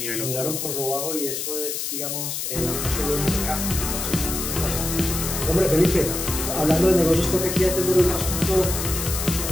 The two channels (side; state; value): left; noise; hiss, 3 dB below the sound